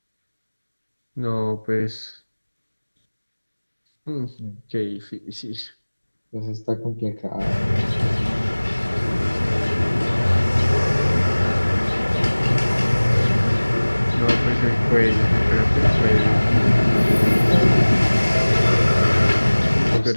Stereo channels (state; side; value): inverted; both; correlation -1.00